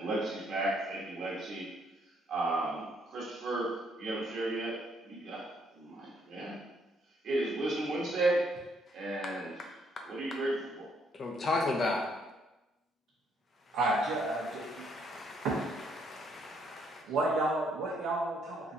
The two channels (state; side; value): normal; both; correlation 0.70